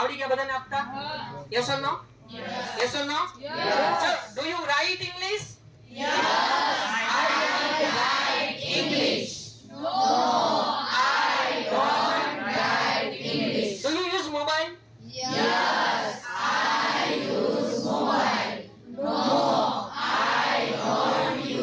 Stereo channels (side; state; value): both; identical; correlation 1.00